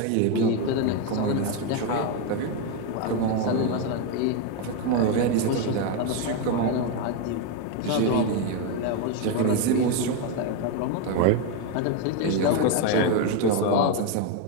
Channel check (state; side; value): different; both; correlation 0.02